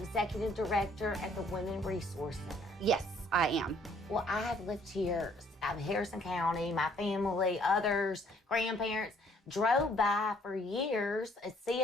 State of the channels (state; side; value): normal; both; correlation 0.62